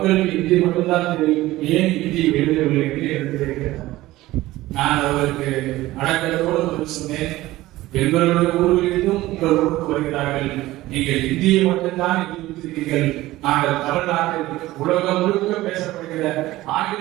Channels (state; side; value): quieter; left; 17.2 dB